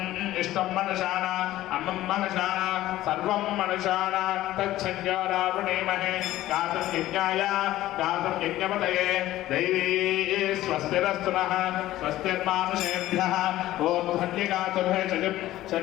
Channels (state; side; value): quieter; right; 15.0 dB